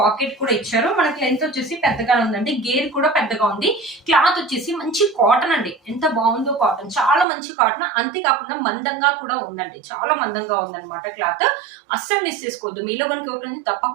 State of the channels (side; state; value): left; drops out; at 7.2 s